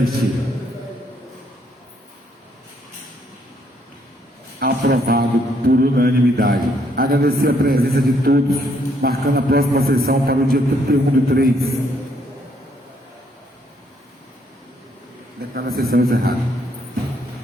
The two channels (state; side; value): normal; both; correlation 0.70